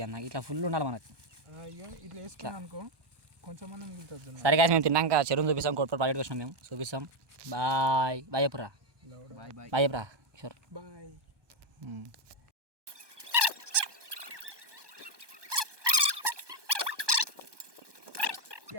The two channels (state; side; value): late; left; 1.2 ms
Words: కదా. నాకు ఇట్లా ఫుల్ ఉండాలి మనకు. ఇట్లా వేసుకున్నాను అనుకో కొంచెం అన్న మిగులుతుంది. సరే కాదు మేము తిన్నాక చెరువుని చూపిస్తాం. కోట్పల్లి ప్రాజెక్ట్ వచ్చినాం మేము చూపిస్తాం. బాయ్ బాయ్ చెప్పురా. బాయ్ చెప్పురా కిషోర్. బాయ్.